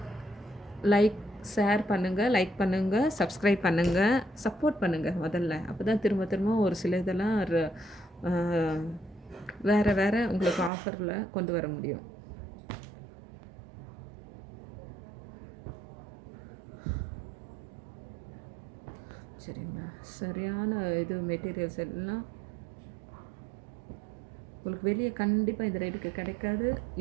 ஷேர் பண்ணுங்கள், லைக் பண்ணுங்கள், சப்ஸ்கிரைப் பண்ணுங்கள், சப்போர்ட் பண்ணுங்கள் முதல்ல. அப்போ தான் திரும்ப திரும்ப ஒரு சில இதெல்லாம் வேறு வேறு உங்களுக்கு ஆஃபரில் கொண்டு வர முடியும். சரிங்களா? சரியான இது மெட்டீரியல்ஸ் எல்லாம் உங்களுக்கு வெளியே கண்டிப்பாக இந்த ரேட்டுக்கு கிடைக்காது.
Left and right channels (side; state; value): left; drops out; at 10.7 s